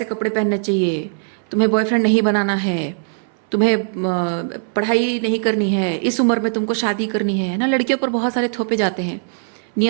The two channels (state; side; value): silent; left; 66 dB below the other